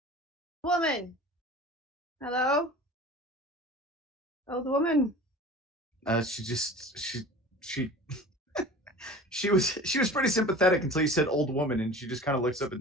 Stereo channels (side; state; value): both; normal; correlation 0.39